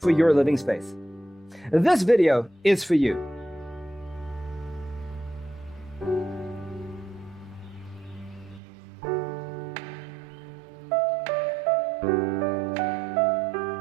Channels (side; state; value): left; drops out; at 8.6 s